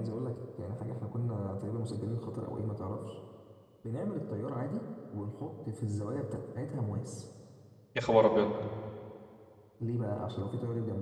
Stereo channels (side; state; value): both; identical; correlation 1.00